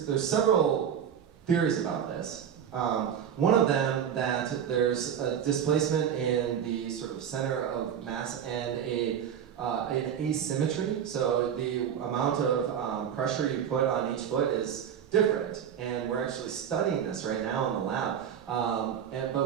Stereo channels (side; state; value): left; quieter; 8.6 dB